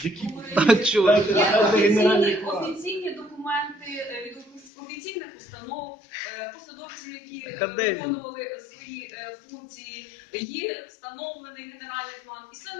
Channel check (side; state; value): right; drops out; at 4.7 s